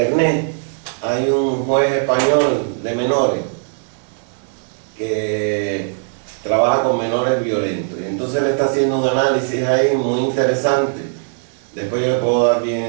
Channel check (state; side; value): silent; left; digital silence